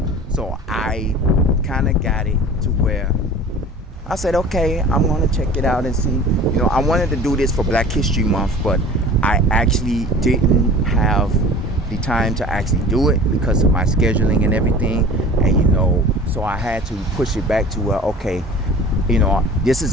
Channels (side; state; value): both; normal; correlation 0.41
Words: So I kind of got it to where I said, okay, I'm going to check it out and see. I wanted to do this for Black History Month, but I actually didn't have the time to actually do it because of my scheduling and everything. And, so I had to push it back to where, okay, this